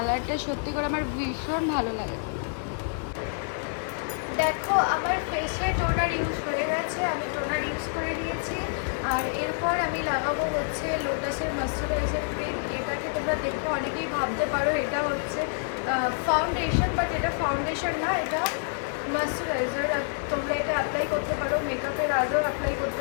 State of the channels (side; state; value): right; silent; 60 dB below the other